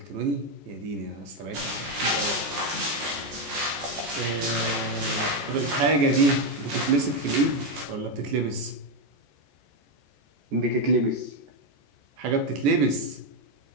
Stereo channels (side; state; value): left; late; 14 ms